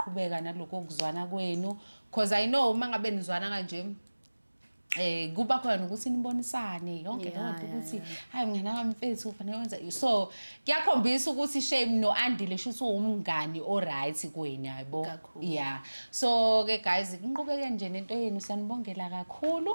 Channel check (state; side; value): inverted; both; correlation -1.00